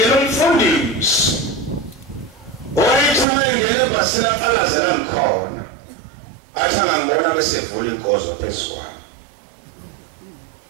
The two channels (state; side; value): drops out; left; at 3.2 s